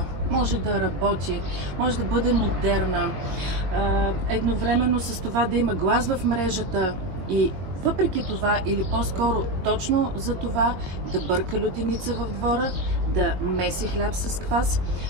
може да работи, може да бъде модерна, едновременно с това да има глас в мрежата и въпреки това, или по-скоро точно за това, да бърка лютеница в двора, да меси хляб с квас,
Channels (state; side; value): late; left; 21 ms